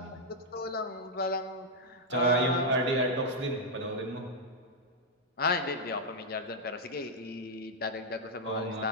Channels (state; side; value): normal; both; correlation -0.03